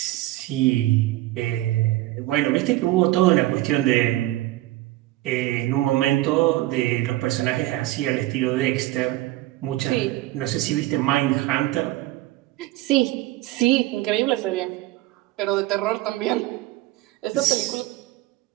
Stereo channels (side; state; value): left; quieter; 17.0 dB